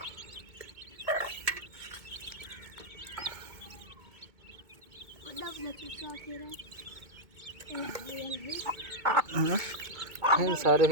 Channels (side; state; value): left; late; 2.2 ms